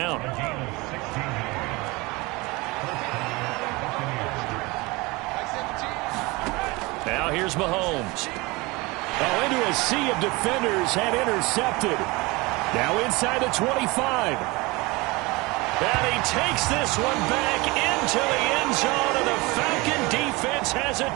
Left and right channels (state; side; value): quieter; left; 23.9 dB